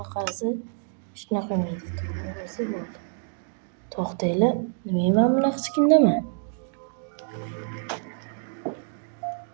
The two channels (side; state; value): left; silent; 60 dB below the other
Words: qarasa shunaqa qilmaydi. To'g'risi bo'ldi. To'xtanglar, nimaga men bunaqa chiqindaman?